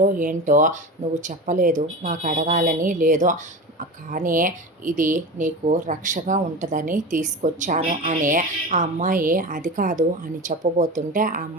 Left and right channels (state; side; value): normal; both; correlation 0.28